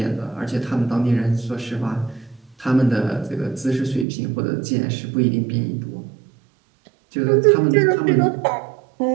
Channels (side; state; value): left; drops out; at 4.0 s